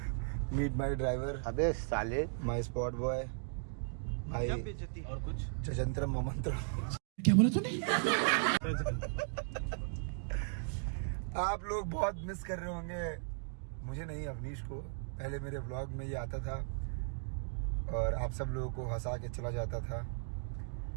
माई ड्राइवर, अबे साले, माई स्पॉट बॉय, माई और कुछ चजंत्र मोमंत्र। क्या बोला तूने? आप लोग बहुत मिस कर रहे होंगे मुझे, नहीं अवनीश को। पहले मेरे व्लॉग में ये आता था और आप सब लोगों को हंसा के चला जाता था।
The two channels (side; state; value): left; silent; digital silence